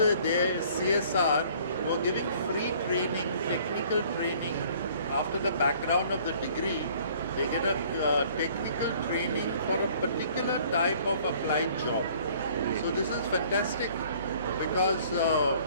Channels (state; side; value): inverted; both; correlation -0.55